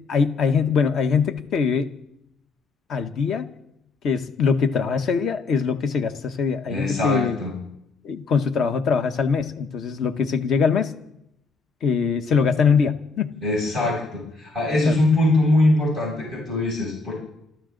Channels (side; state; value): right; quieter; 4.0 dB